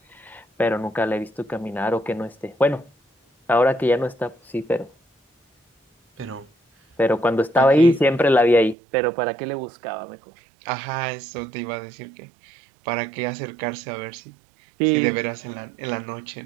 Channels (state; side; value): drops out; left; at 8.8 s